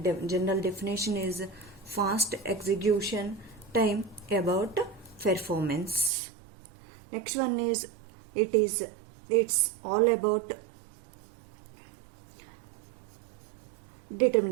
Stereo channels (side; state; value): left; drops out; at 6.1 s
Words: general definition is fast execution time about performance. Next one is it's all about